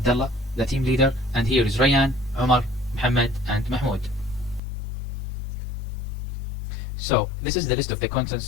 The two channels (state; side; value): drops out; right; at 4.6 s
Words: the team leader, and here is Rayyan, Omar, Muhammad and Mahmoud. So, this is the list of the contents